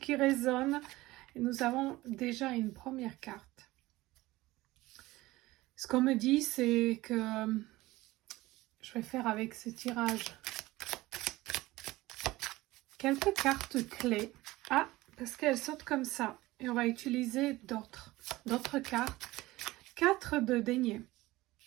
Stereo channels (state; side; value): quieter; left; 18.7 dB